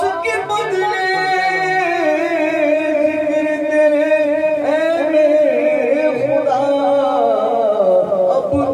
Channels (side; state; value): both; identical; correlation 1.00